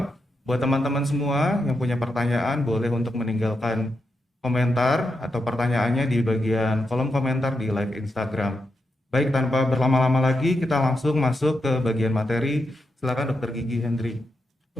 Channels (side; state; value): both; normal; correlation 0.85